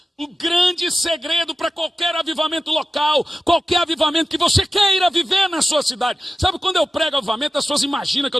O grande segredo para qualquer avivamento local, qualquer avivamento que você queira viver na sua cidade. Sabe, quando eu prego avivamento, as pessoas imaginam que eu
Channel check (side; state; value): both; normal; correlation 0.95